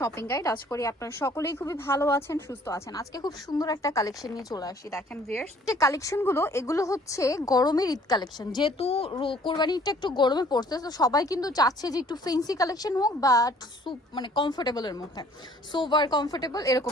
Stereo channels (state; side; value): normal; both; correlation 0.57